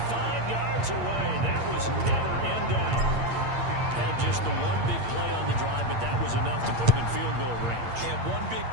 yards away. That was never in doubt. Had just the one big play on the drive, but that was enough to put him in field goal range. And one big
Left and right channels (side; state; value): left; late; 8.6 ms